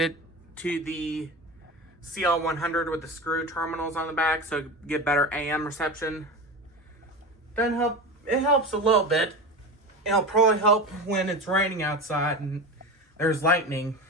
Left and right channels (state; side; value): normal; both; correlation 0.26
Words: to the CL100 with the screw terminals on the back so get better AM reception. Doesn't help. It helps a little bit. It'll probably help when it's raining outside and there's lightning.